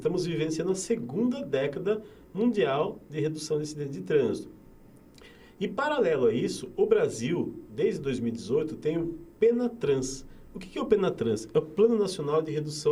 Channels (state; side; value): identical; both; correlation 1.00